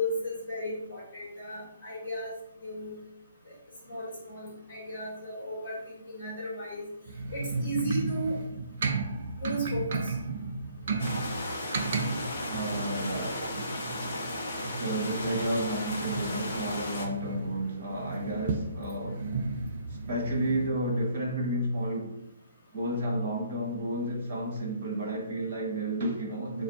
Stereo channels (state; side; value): inverted; both; correlation -0.61